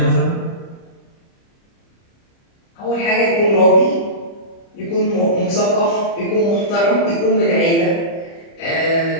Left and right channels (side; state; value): right; late; 30 ms